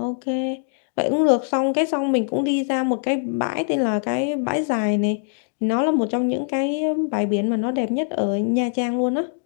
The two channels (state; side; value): silent; right; digital silence